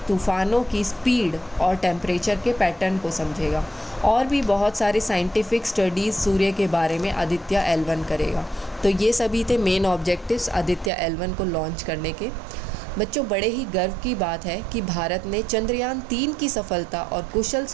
तूफ़ानों की स्पीड और टेम्परेचर के पैटर्न को समझेगा। और भी बहुत सारे साइंटिफिक स्टडीज़ सूर्य के बारे में आदित्य L1 करेगा। तो ये सभी थे मेन ऑब्जेक्टिव्स आदित्य L1 को लॉन्च करने के। बच्चों, बड़े ही गर्व की बात है कि भारत ने चंद्रयान 3 की सफलता और कुशल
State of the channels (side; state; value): left; drops out; at 10.9 s